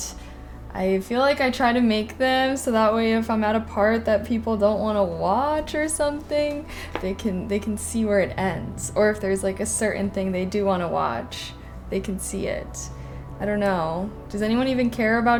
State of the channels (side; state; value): both; identical; correlation 1.00